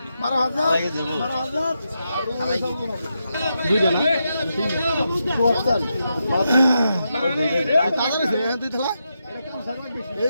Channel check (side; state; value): both; inverted; correlation -0.85